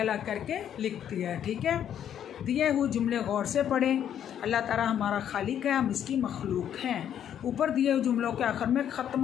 करके लिख दिया है, ठीक है। दिए हुए जुमले गौर से पढ़ें। अल्लाह ताला हमारा खालिक है, हम इसकी मखलूक हैं। ऊपर दिए हुए जुमलों के आखिर में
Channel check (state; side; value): quieter; right; 9.7 dB